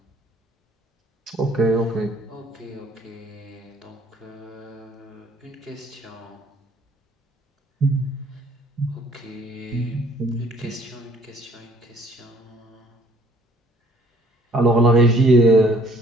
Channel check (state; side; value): normal; both; correlation 0.59